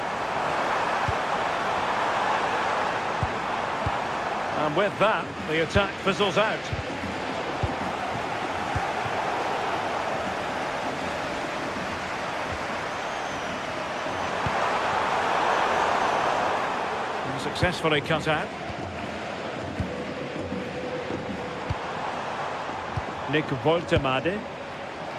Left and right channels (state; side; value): identical; both; correlation 1.00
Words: And with that, the attack fizzles out. Successfully cut out. Nick Woltemade.